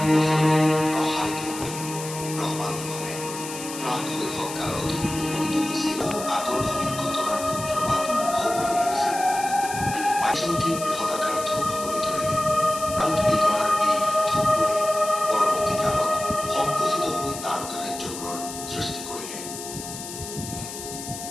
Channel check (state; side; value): noise; left; hiss, 10 dB below the sound